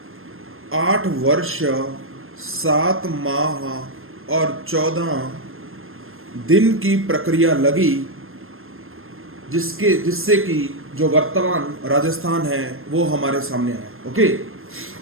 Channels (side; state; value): left; late; 0.60 ms